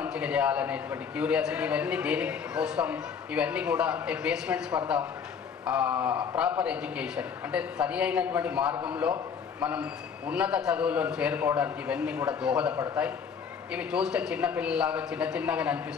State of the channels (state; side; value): quieter; right; 6.7 dB